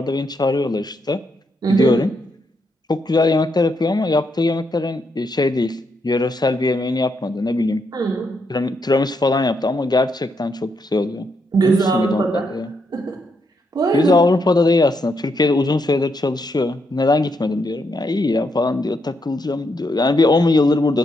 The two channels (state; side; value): normal; both; correlation 0.79